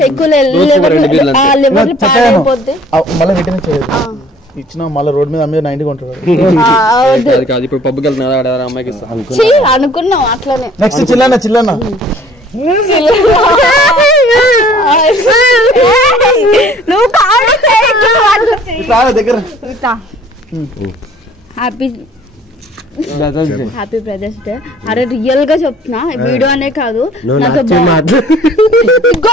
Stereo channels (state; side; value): normal; both; correlation 0.54